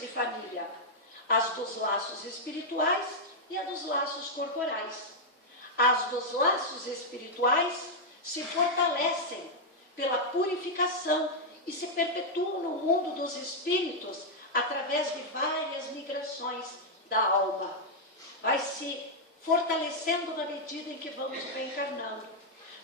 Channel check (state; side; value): normal; both; correlation -0.03